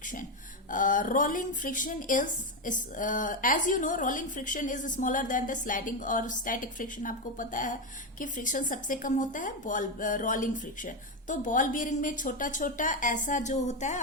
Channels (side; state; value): both; normal; correlation 0.09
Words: Rolling friction is as you know, rolling friction is smaller than the sliding और स्टैटिक फ्रिक्शन। आपको पता है कि फ्रिक्शन सबसे कम होता है रोलिंग फ्रिक्शन। तो बॉल बियरिंग में छोटा छोटा ऐसा जो होता है,